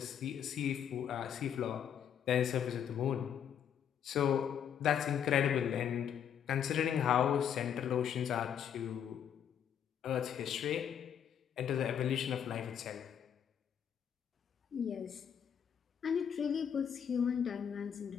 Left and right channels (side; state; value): right; quieter; 8.6 dB